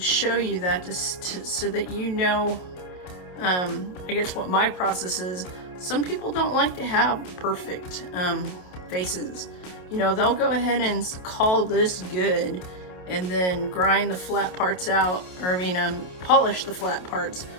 show you that so that you know, I guess what my process is. Some people don't like to have perfect faces. You know, they'll go ahead and call this good and then grind the flat parts out, or polish the flat parts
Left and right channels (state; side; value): late; right; 28 ms